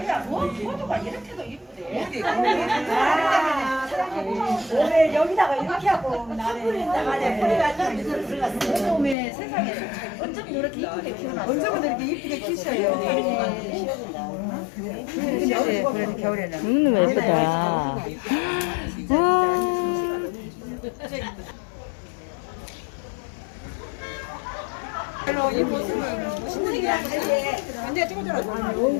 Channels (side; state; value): right; drops out; at 9.2 s